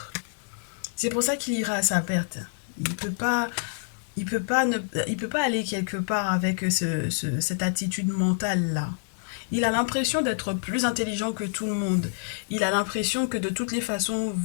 C'est pour ça qu'il ira à sa perte. Il peut pas, il peut pas aller quelque part avec cette attitude mentale-là. Il a l'impression d'être plus intelligent que tout le monde. Il a l'impression que de toutes les façons,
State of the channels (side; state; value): right; silent; 60 dB below the other